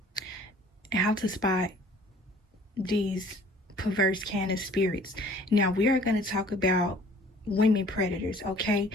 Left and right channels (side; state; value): both; normal; correlation 0.53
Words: how to spot these perverse kind of spirits. Now we are going to talk about women predators, okay?